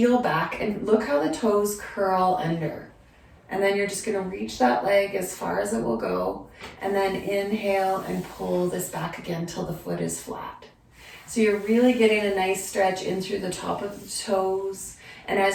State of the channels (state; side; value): identical; both; correlation 1.00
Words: back, and look how the toes curl under. And then you're just going to reach that leg as far as it will go, and then inhale and pull this back again till the foot is flat. So you're really getting a nice stretch in through the top of the toes, and